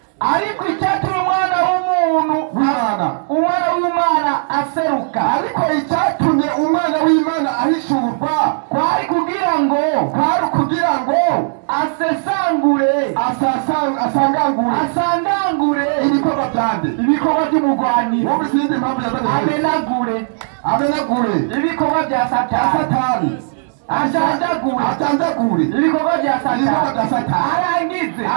Ariko icyatumye umwana w'Imana aseruka. ariko icyatumye umwana w'Imana ahishurwa kwari kugira ngo asangangure ibikorwa byande ibikorwa by'umugwanira. wowe izindi mpamvu yazanye amenagure ibikorwa bya Satani. ajanjagure ibikorwa bya Satani. arangize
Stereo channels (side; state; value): left; silent; digital silence